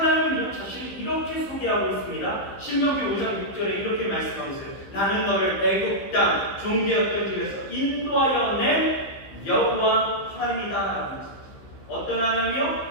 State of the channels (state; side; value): late; right; 15 ms